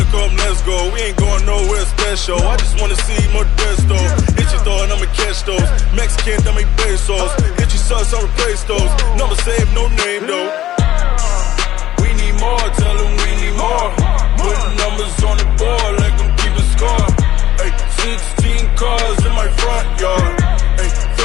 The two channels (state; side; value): quieter; right; 13.5 dB